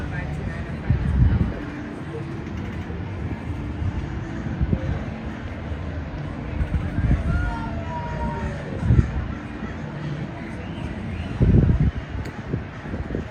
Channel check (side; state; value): both; identical; correlation 1.00